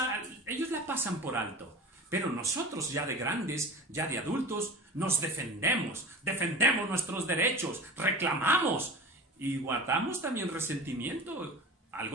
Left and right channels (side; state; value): both; normal; correlation 0.35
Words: ellos la pasan por alto. Pero nosotros ya de grandes, ya de adultos, nos defendemos nuestros derechos, reclamamos y guardamos también resentimiento,